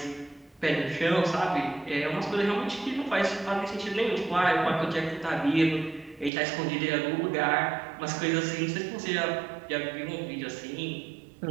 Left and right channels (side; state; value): left; drops out; at 6.3 s